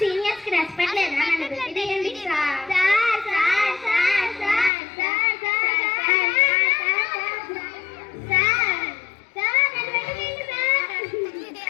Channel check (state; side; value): drops out; right; at 4.7 s